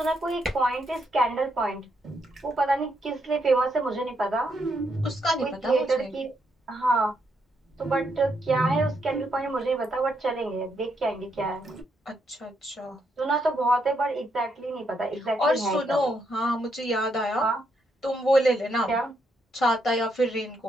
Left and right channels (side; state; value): both; normal; correlation 0.78